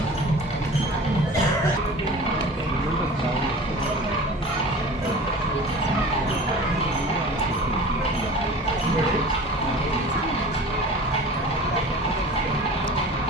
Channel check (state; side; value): normal; both; correlation 0.39